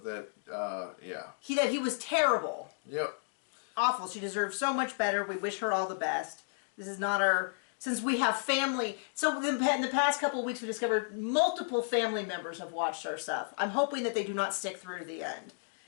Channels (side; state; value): right; silent; digital silence